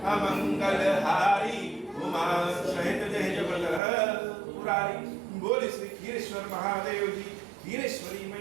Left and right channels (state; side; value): drops out; left; at 3.8 s